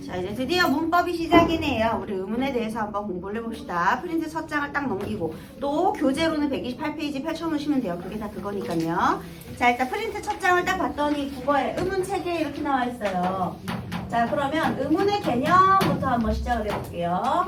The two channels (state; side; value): identical; both; correlation 1.00